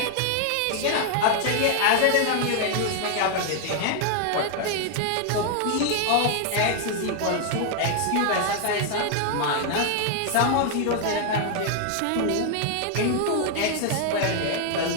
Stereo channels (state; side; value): different; both; correlation 0.00